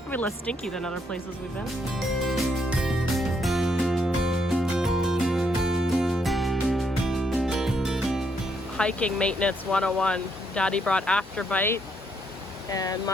less stinky than other places we've been. Hiking maintenance 101. Daddy brought Afterbite, and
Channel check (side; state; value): both; normal; correlation 0.74